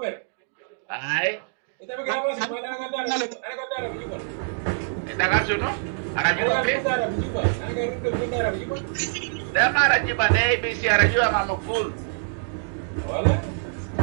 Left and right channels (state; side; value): silent; left; digital silence